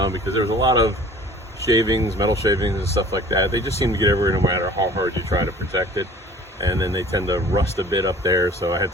because there's a lot of shavings, metal shavings and stuff like that. They just seem to get everywhere no matter how hard you try to protect it, and then they tend to rust a bit up there, so I had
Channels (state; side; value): normal; both; correlation 0.48